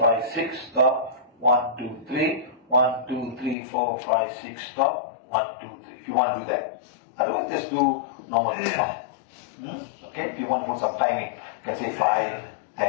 6, stop. 1, 2, 3, 1, 2, 3, 4, 5, 6, stop. 1, 2, 3. If you want to do that. Otherwise, just do normal count. Okay, if you want to put some timing, you can say 5,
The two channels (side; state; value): right; drops out; at 3.6 s